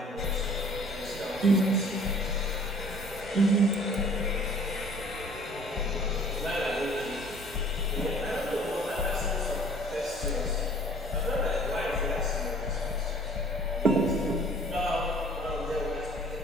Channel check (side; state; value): both; normal; correlation 0.52